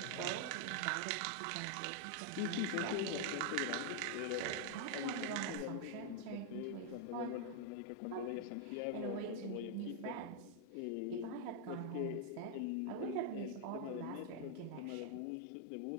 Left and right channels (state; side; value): different; both; correlation 0.00